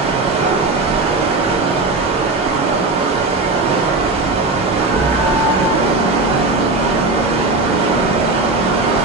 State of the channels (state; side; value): quieter; left; 3.3 dB